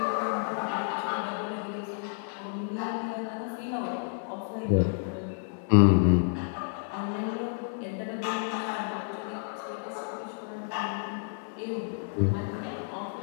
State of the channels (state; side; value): silent; right; digital silence